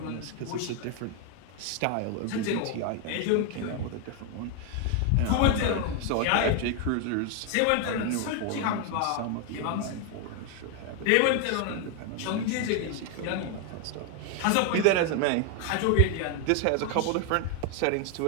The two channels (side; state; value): both; different; correlation 0.01